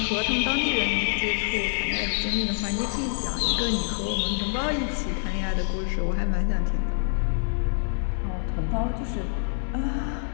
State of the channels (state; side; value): silent; right; digital silence